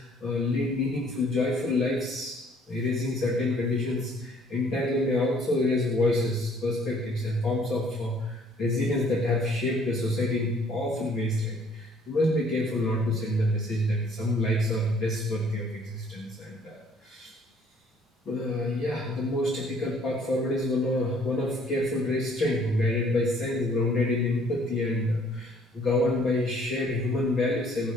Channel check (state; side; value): normal; both; correlation 0.60